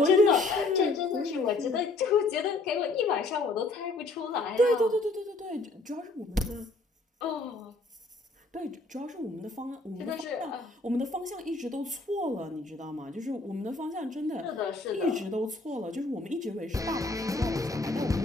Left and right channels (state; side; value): quieter; right; 3.2 dB